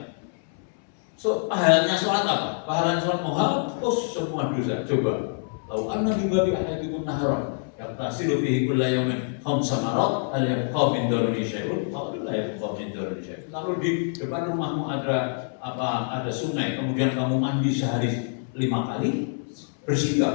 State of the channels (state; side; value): silent; right; 59 dB below the other